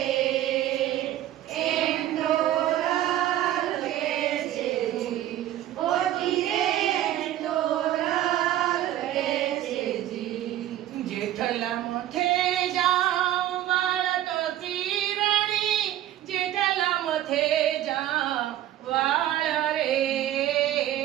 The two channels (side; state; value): left; quieter; 13.0 dB